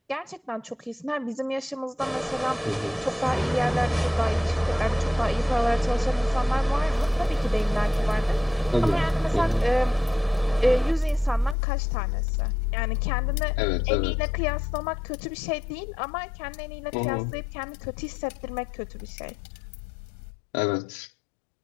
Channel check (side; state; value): right; drops out; at 11.6 s